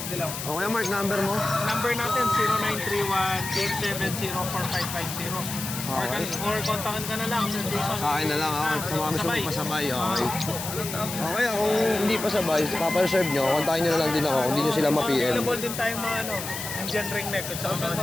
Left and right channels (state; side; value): noise; left; hiss, 7 dB below the sound